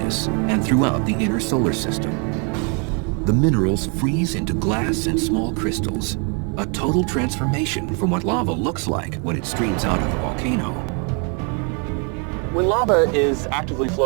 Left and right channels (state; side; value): quieter; left; 37.2 dB